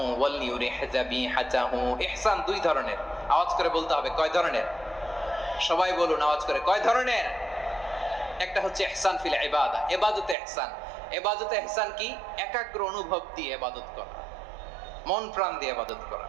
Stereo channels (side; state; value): left; drops out; at 10.4 s